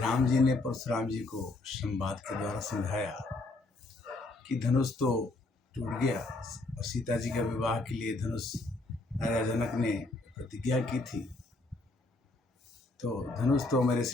जी ने परशुराम जी को संवाद के द्वारा समझाया कि धनुष तो टूट गया और सीता जी का विवाह के लिए धनुष राजा जनक ने प्रतिज्ञा की थी, तो धनुष तो मेरे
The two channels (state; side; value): quieter; right; 3.1 dB